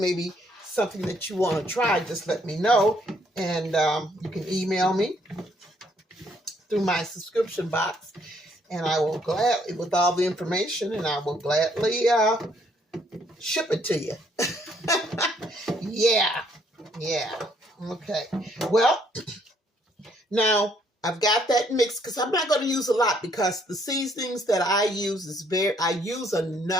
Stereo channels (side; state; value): both; normal; correlation 0.68